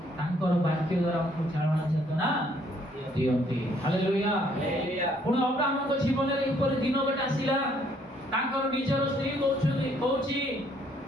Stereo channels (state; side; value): normal; both; correlation 0.66